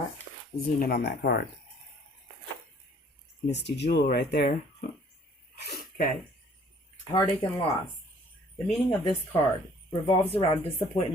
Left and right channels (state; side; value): normal; both; correlation 0.57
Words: Zoom in on that card. Misty Jewel right there. Okay. Heartache and loss. The meaning of this card revolves around